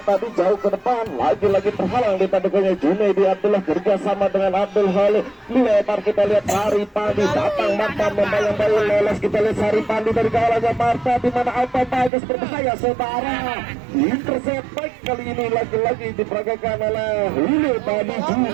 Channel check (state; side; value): drops out; left; at 12.1 s